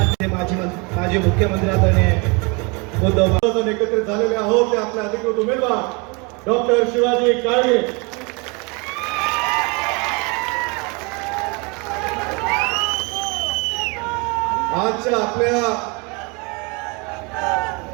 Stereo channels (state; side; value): quieter; left; 29.9 dB